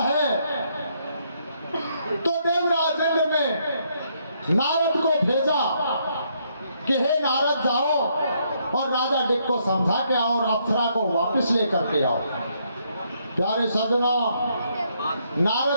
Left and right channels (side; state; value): both; inverted; correlation -0.73